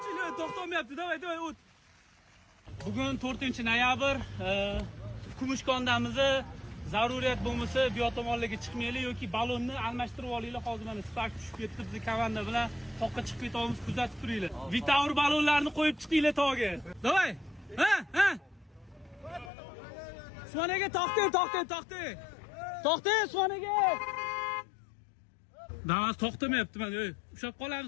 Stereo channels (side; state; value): right; drops out; at 19.5 s